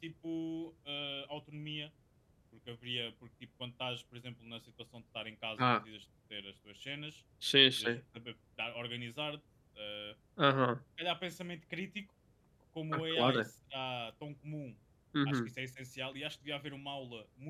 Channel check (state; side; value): identical; both; correlation 1.00